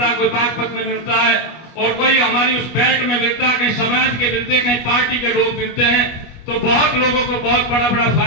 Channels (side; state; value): right; late; 25 ms